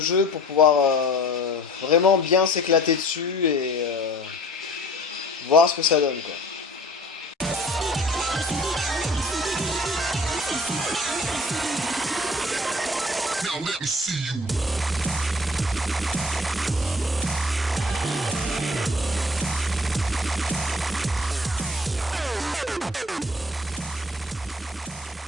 pour pouvoir vraiment bien s'éclater dessus et voir ce que ça donne, quoi. Now let me see you.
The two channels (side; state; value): both; normal; correlation 0.49